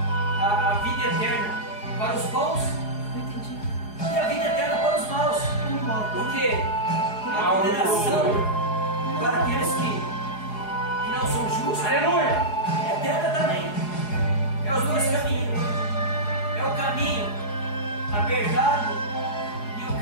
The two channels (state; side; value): late; right; 4.8 ms